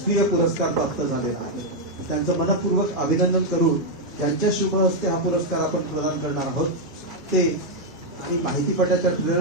पुरस्कार प्राप्त झालेला आहे. त्यांचं मनपूर्वक अभिनंदन करून त्यांच्या शुभ हस्ते हा पुरस्कार आपण प्रदान करणार आहोत. ते आणि माहितीपटाच्या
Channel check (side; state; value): both; normal; correlation 0.00